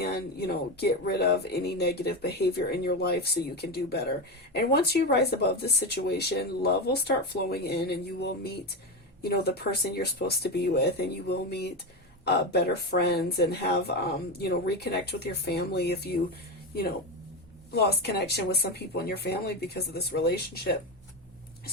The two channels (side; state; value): both; normal; correlation 0.17